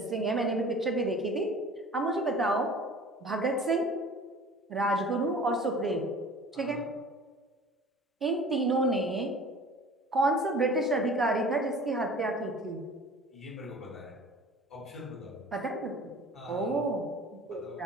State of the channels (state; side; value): normal; both; correlation 0.44